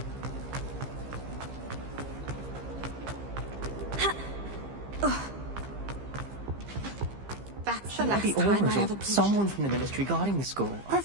That's the last time I ever... Someone from the Ministry guarding the school.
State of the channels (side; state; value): left; late; 15 ms